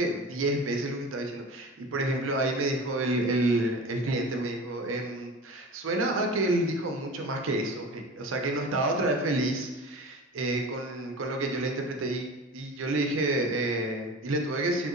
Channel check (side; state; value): both; normal; correlation 0.35